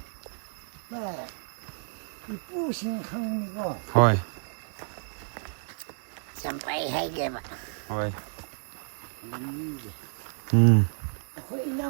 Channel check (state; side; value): silent; left; digital silence